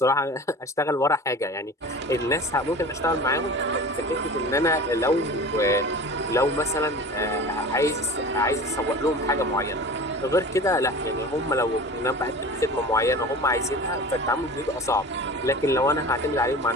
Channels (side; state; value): both; normal; correlation 0.37